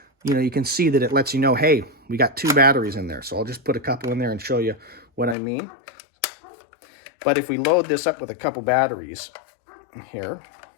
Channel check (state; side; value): drops out; right; at 5.4 s